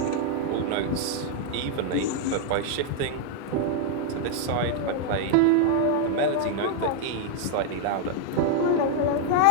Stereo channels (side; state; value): both; different; correlation 0.00